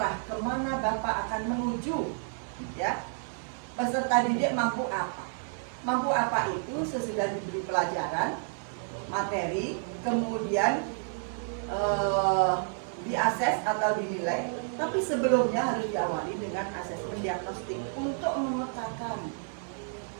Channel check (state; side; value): silent; left; 58 dB below the other